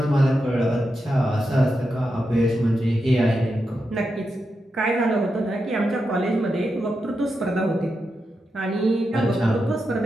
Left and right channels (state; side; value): normal; both; correlation 0.87